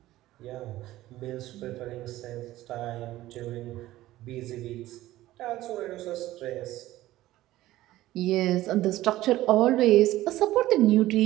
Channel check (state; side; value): quieter; left; 15.8 dB